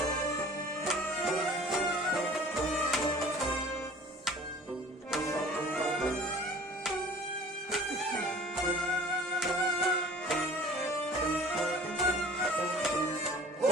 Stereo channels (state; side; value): normal; both; correlation 0.47